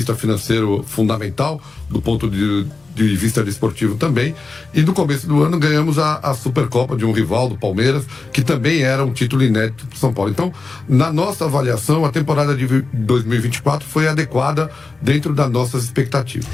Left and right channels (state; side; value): quieter; right; 3.9 dB